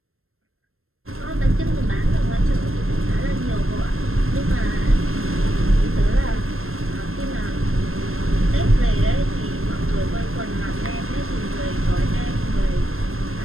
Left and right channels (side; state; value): left; late; 0.62 ms